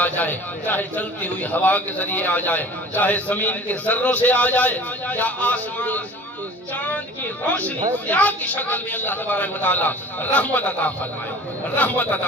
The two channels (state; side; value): normal; both; correlation 0.44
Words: جائے، چاہے چلتی ہوئی ہوا کے ذریعے آ جائے، چاہے زمین کے ذروں سے آ جائے، یا آسمان چاند کی روشنی ضیاء کی شکل میں اللہ تبارک و تعالیٰ رحمت عطا فرمائے۔